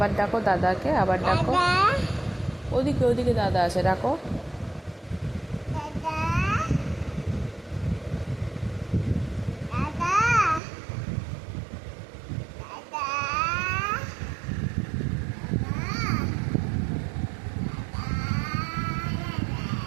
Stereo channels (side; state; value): left; drops out; at 10.6 s